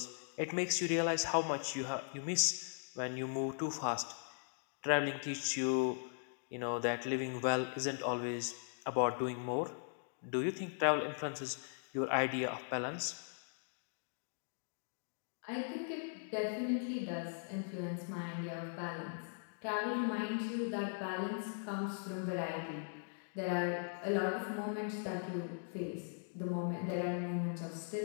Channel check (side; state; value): right; silent; digital silence